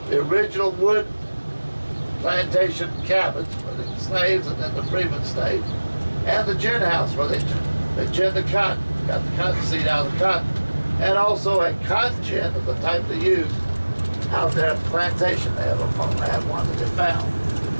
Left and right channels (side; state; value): both; inverted; correlation -1.00